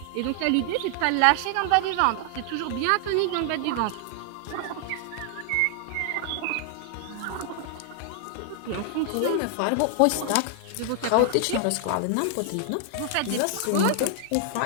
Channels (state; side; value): different; both; correlation 0.00